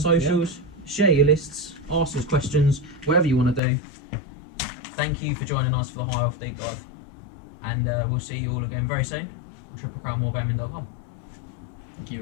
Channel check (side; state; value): right; drops out; at 3.6 s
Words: socials, share your lists, ask us questions, whatever you want to do. Thank you for joining us for the High Elf Deep Dive, and we'll see you all again very soon on triplecrownwargaming.com. Thank you